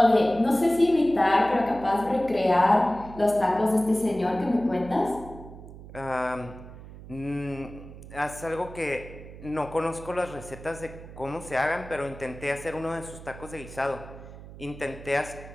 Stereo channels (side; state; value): right; noise; hum, 15 dB below the sound